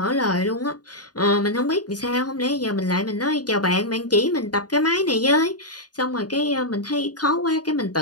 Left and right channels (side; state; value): right; late; 0.69 ms